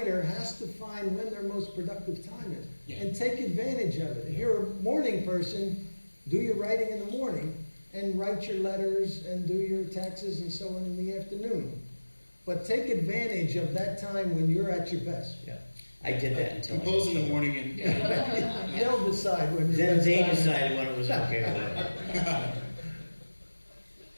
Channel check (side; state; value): both; inverted; correlation -1.00